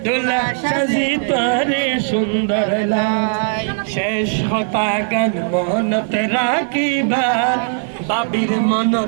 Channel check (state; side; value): silent; left; 67 dB below the other